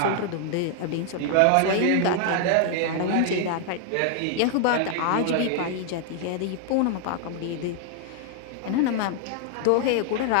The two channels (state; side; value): different; both; correlation 0.00